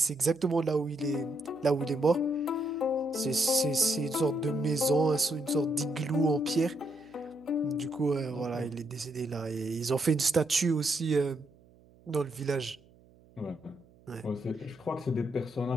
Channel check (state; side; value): noise; right; hum, 28 dB below the sound